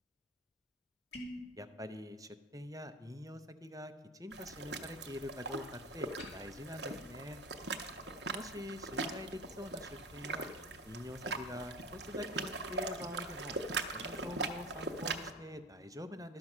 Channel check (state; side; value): normal; both; correlation 0.31